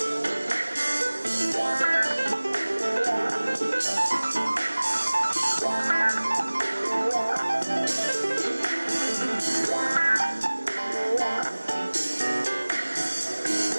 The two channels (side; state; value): both; inverted; correlation -1.00